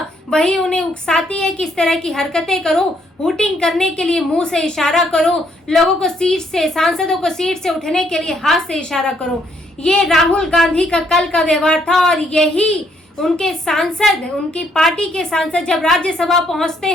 वही उन्हें उकसाती है कि इस तरह की हरकतें करो, हूटिंग करने के लिए मुंह से इशारा करो, लोगों को सीट से, सांसदों को सीट से उठने के लिए हाथ से इशारा करो। ये राहुल गांधी का कल का व्यवहार था और यही उनके सांसद, उनकी पार्टी के सांसद जब राज्यसभा पहुंचते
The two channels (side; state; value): both; normal; correlation 0.70